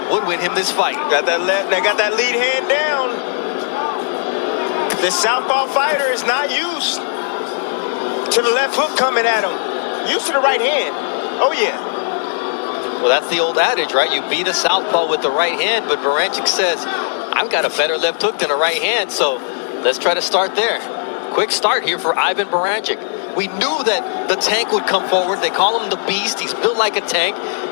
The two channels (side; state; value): right; silent; digital silence